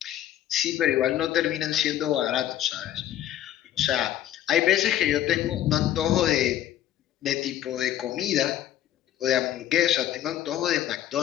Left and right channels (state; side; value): quieter; right; 12.0 dB